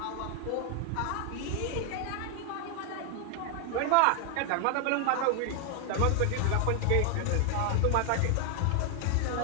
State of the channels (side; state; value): both; different; correlation 0.00